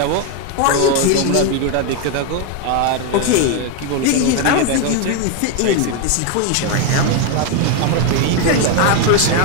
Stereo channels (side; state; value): both; different; correlation 0.01